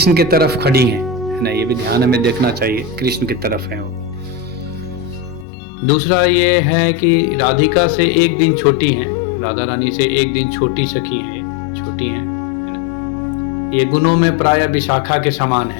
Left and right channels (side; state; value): right; drops out; at 5.5 s